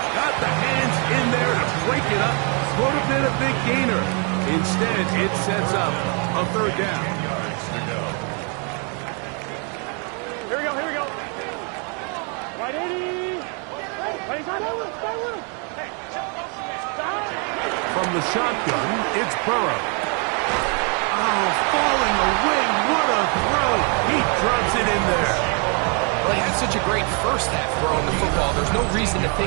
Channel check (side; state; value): left; quieter; 36.8 dB